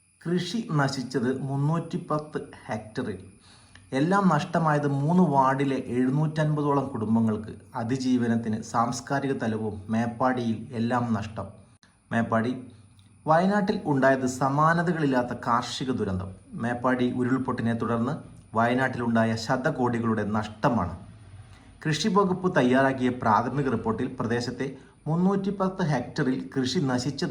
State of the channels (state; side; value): identical; both; correlation 1.00